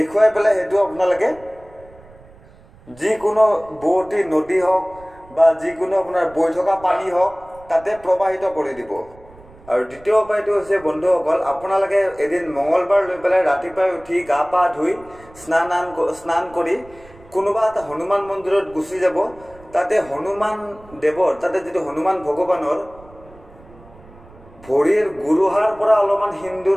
পেলাই সেইটো আপোনালোকে যিকোনো বোৱতী নদী হওক বা যিকোনো আপোনাৰ বৈ থকা পানী হওক তাতে প্ৰবাহিত কৰি দিব। আৰু দ্বিতীয় উপায়টো হৈছে বন্ধুসকল, আপোনালোকে এদিন মঙলবাৰ লৈ পেলাই ৰাতিপুৱাই উঠি গা পা ধুই স্নান কৰি কোনোবা এটা হনুমান মন্দিৰত গুচি যাব। তাতে হনুমান দেৱৰ, তাতে যিটো হনুমান ভগৱানৰ ভৰিৰ গুৰুহাৰ পৰা অলপমান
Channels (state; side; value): noise; right; rumble, 24 dB below the sound